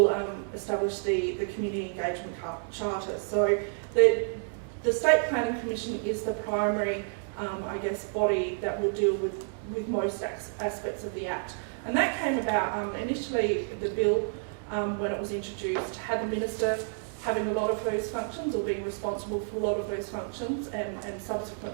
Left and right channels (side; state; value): left; silent; 58 dB below the other